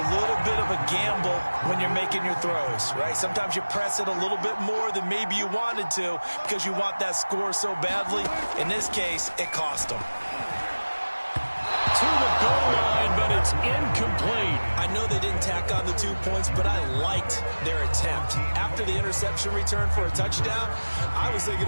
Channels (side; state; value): both; inverted; correlation -1.00